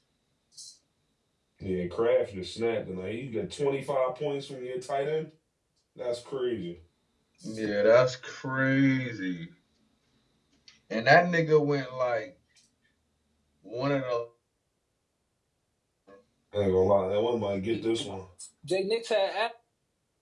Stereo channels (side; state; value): both; identical; correlation 1.00